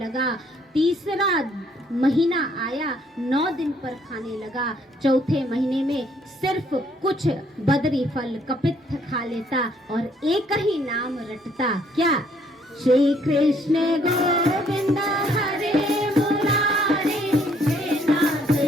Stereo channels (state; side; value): normal; both; correlation 0.66